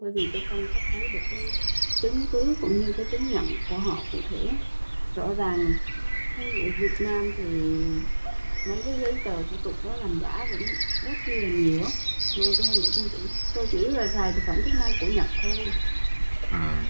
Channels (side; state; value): both; inverted; correlation -1.00